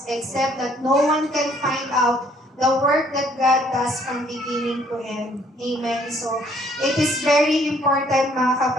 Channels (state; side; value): normal; both; correlation 0.63